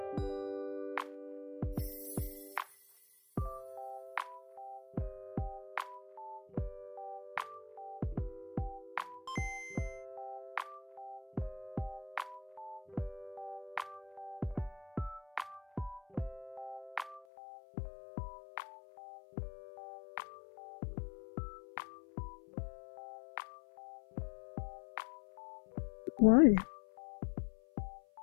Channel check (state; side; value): drops out; right; at 17.2 s